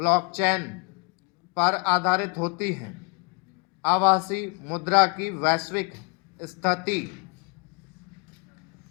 पर आधारित होती है। आभासी मुद्रा की वैश्विक स्थिति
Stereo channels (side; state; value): right; quieter; 34.3 dB